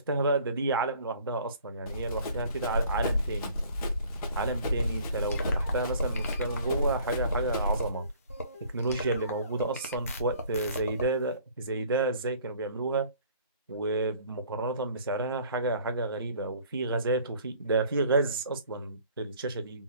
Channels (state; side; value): inverted; both; correlation -0.54